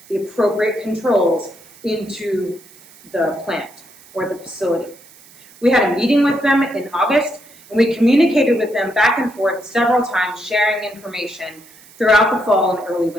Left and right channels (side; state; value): right; noise; hiss, 24 dB below the sound